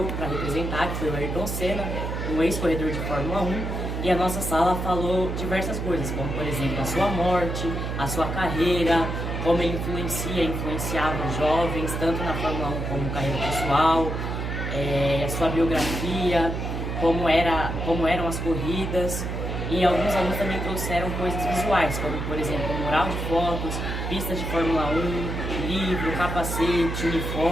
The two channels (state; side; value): noise; right; hum, 3 dB below the sound